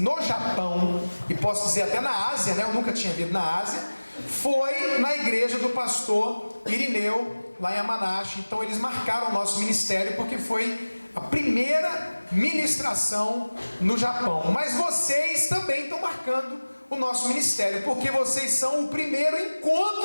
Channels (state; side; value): inverted; both; correlation -1.00